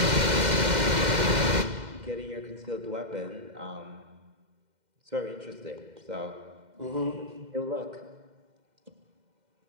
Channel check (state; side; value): late; left; 2.1 ms